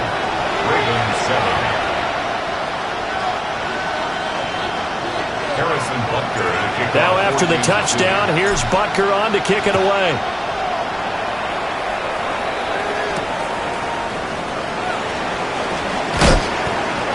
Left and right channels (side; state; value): both; identical; correlation 1.00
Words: Ravens 7. Harrison Butker to kick Now off after the touchdown, here's Butker on to kick it away.